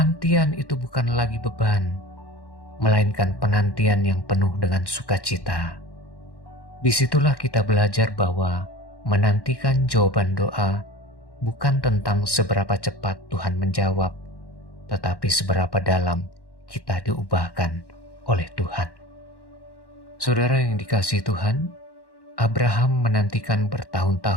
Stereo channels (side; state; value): right; late; 1.1 ms